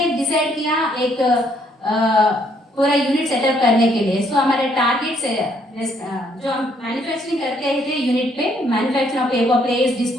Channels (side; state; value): both; normal; correlation 0.68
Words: डिसाइड किया एक पूरा यूनिट सेटअप करने के लिए। सो हमारे टारगेट से जो हम मैन्युफैक्चरिंग करते थे यूनिट पे, manufacture of paper plates,